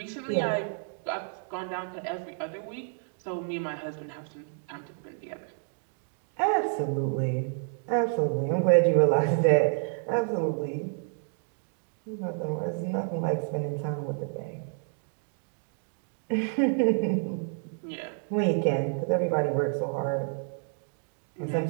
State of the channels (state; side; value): silent; left; 58 dB below the other